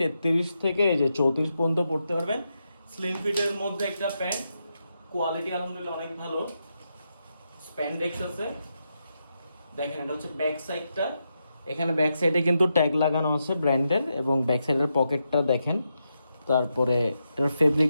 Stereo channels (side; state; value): both; inverted; correlation -0.85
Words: থেকে এই যে 34 পর্যন্ত পড়তে পারবেন। স্লিম ফিটের মধ্যে একটা প্যান্ট, কোয়ালিটি আলহামদুলিল্লাহ অনেক ভালো। স্প্যান্ডেক্স আছে, দেখেন এটা হচ্ছে ব্যাক সাইডটা। এখানে ব্যাক সাইডে কিন্তু ট্যাগ লাগানো আছে ব্র্যান্ডের, এবং ব্যাক সাইডের পকেটটা দেখেন। তারপরে এটার